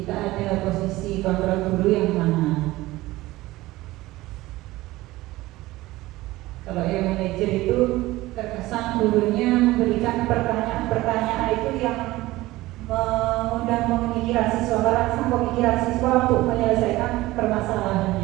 ada posisi kontrol guru yang mana. Kalau yang manajer itu terkesan gurunya memberikan pertanyaan-pertanyaan itu yang mengundang pemikiran siswa, merangsang pemikiran siswa untuk menyelesaikan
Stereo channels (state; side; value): quieter; left; 18.2 dB